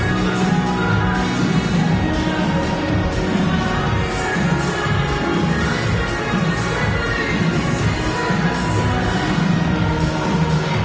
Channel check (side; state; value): both; identical; correlation 1.00